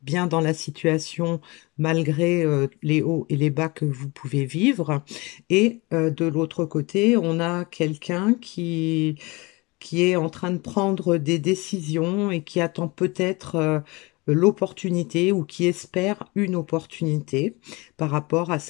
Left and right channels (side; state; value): right; quieter; 25.0 dB